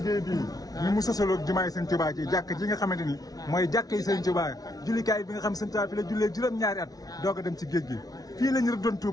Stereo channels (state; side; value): late; right; 0.18 ms